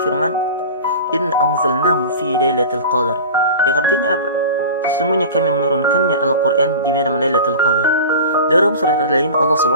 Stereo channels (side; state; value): both; inverted; correlation -0.34